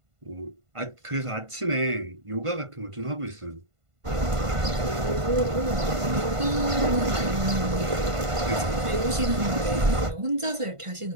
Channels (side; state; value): left; late; 1.5 ms